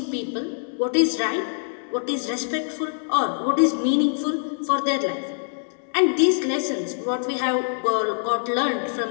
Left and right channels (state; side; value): silent; right; digital silence